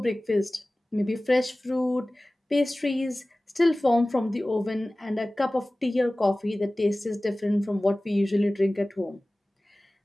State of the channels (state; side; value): normal; both; correlation 0.98